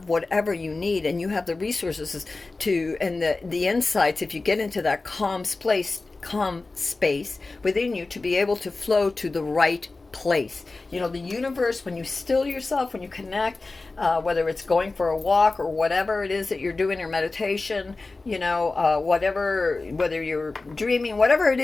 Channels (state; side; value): quieter; right; 3.5 dB